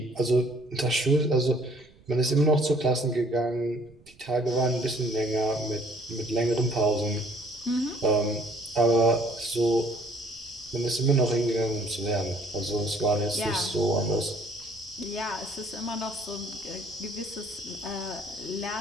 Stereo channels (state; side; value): noise; right; rumble, 27 dB below the sound